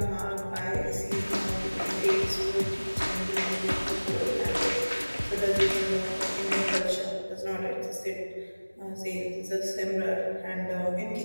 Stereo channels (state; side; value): inverted; both; correlation -1.00